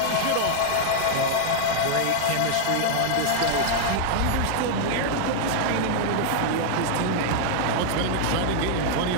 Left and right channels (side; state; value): both; different; correlation -0.01